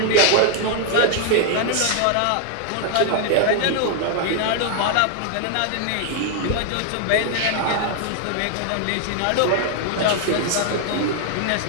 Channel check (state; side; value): different; both; correlation 0.00